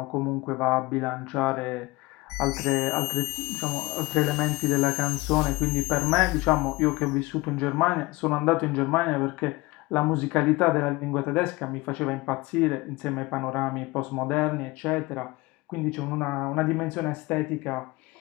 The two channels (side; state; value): right; quieter; 22.1 dB